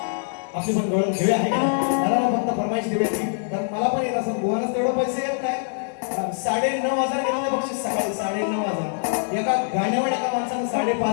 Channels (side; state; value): right; silent; digital silence